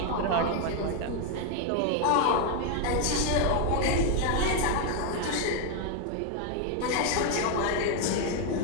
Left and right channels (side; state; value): both; different; correlation 0.01